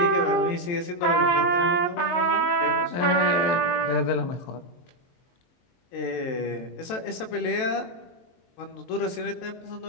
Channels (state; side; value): late; right; 23 ms